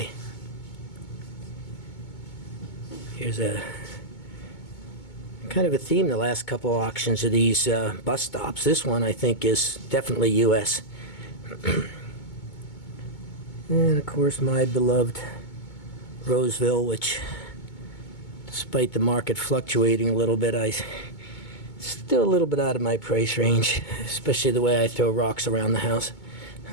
Here's a kind of a theme the last couple auctions of these bus stops. This one I think is definitely U.S. And of course my beloved Roseville, which despite the market fluctuating a little bit, still a little bit out of my price range, especially the way I throw rocks around the house.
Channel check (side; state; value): right; late; 2.2 ms